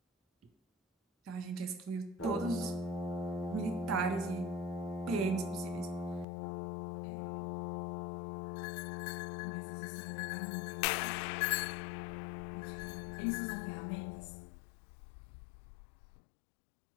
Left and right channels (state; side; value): drops out; right; at 6.2 s